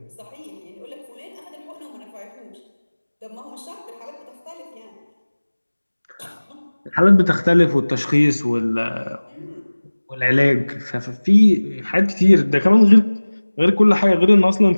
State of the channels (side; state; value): both; inverted; correlation -1.00